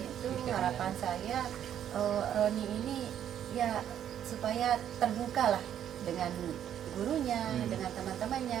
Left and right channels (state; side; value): quieter; left; 10.0 dB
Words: kriteria. harapan saya Roni ini ya supaya terbuka lah dengan gurunya, dengan